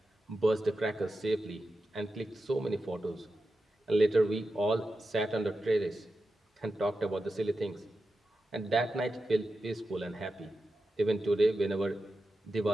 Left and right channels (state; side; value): normal; both; correlation 0.91